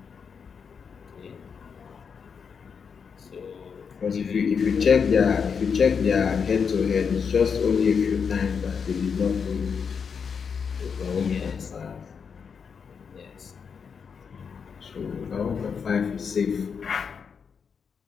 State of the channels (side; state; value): right; quieter; 6.3 dB